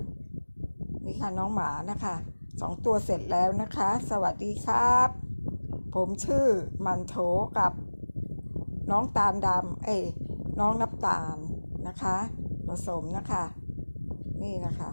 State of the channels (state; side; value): inverted; both; correlation -1.00